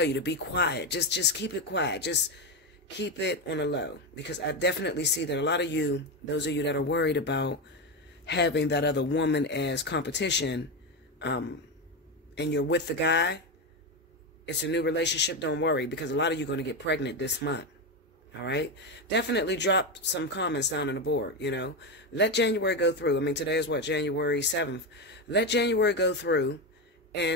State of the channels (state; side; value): normal; both; correlation 0.13